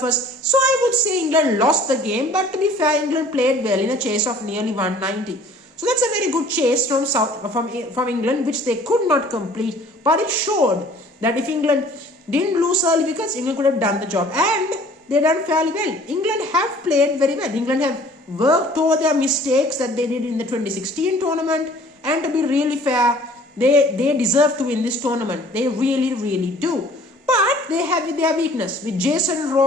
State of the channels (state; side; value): normal; both; correlation 0.52